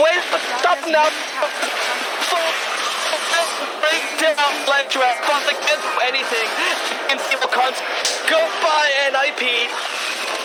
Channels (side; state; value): both; identical; correlation 1.00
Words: stop him now. Break down Ledge Rat, but they can't do anything. TNC will goodbye NIP.